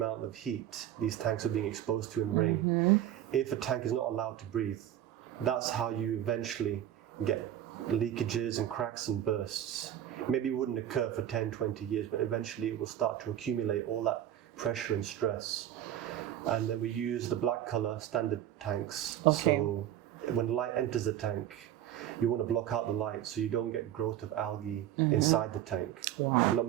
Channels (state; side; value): quieter; left; 11.6 dB